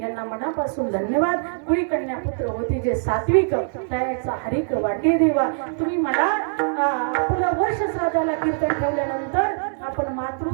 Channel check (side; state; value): left; silent; digital silence